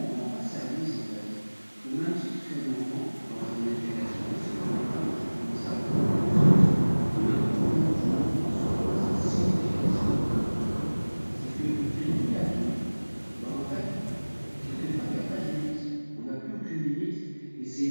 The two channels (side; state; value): both; inverted; correlation -1.00